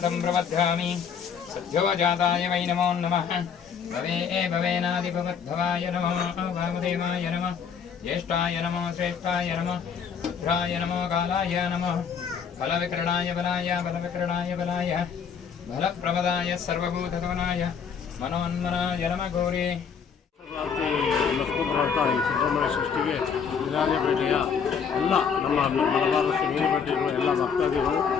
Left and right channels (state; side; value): quieter; right; 6.8 dB